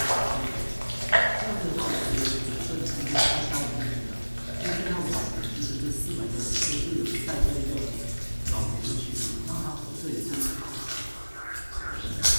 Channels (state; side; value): inverted; both; correlation -1.00